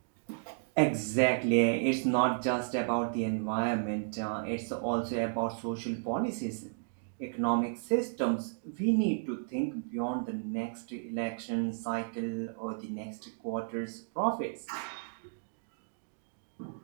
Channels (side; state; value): left; silent; digital silence